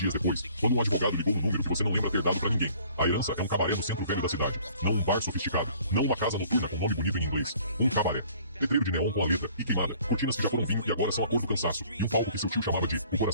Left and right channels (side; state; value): both; inverted; correlation -0.54